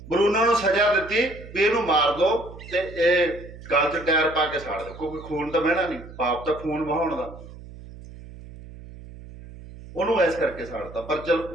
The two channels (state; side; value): noise; right; hum, 16 dB below the sound